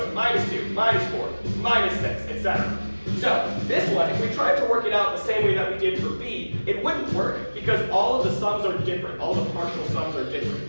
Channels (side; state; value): both; inverted; correlation -1.00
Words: minus 2, minus 4, minus 6, etc. So, this one, if we tried to work it out the same way that we did for B, it wouldn't work because all of the sums are different. All the partial sums are